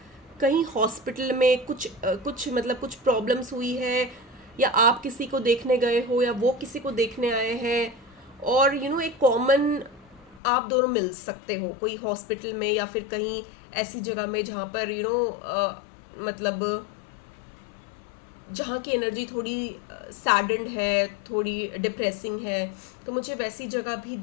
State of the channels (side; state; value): right; drops out; at 10.4 s